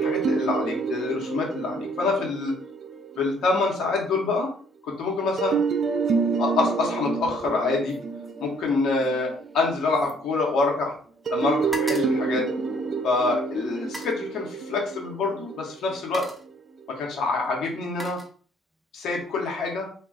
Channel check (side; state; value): both; normal; correlation 0.61